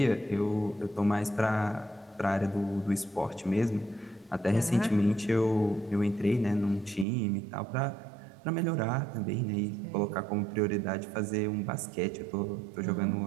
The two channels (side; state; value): left; drops out; at 7.1 s